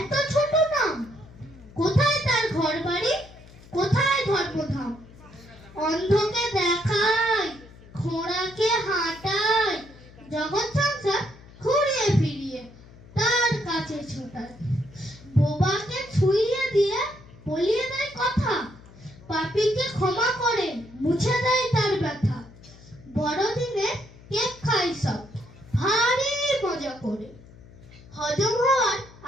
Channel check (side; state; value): left; noise; hum, 21 dB below the sound